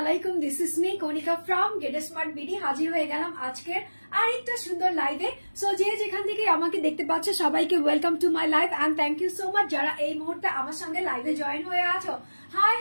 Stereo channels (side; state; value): both; inverted; correlation -1.00